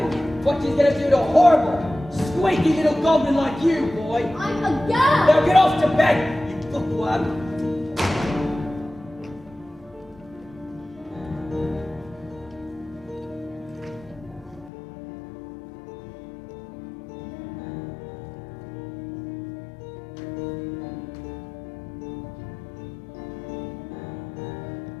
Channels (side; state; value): right; drops out; at 14.7 s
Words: what she's gonna do to a horrible, squeaky little goblin like you, boy. I'm a girl. Now get off to bed, you bookworm.